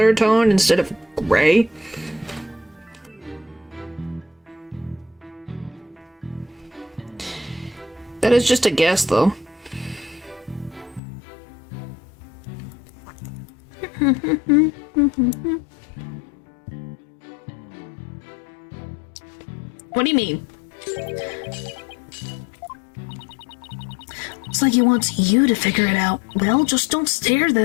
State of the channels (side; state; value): right; drops out; at 11.0 s